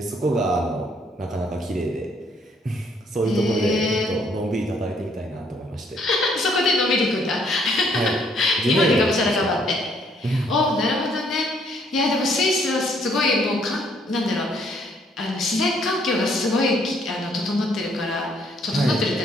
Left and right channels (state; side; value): normal; both; correlation 0.67